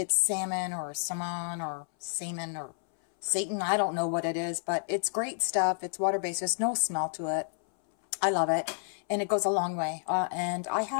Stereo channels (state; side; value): silent; right; 58 dB below the other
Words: salmon or salmon or salmon or Satan. I don't know what it is, but it's great stuff. It's water-based. There's no smell to it. I love it, and it goes a long way. And I